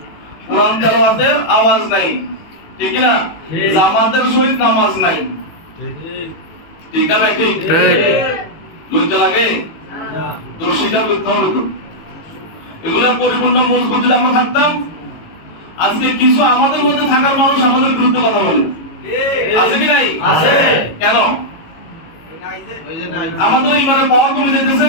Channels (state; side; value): late; right; 18 ms